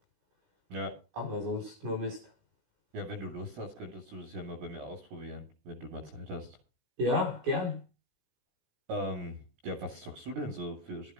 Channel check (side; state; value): left; late; 16 ms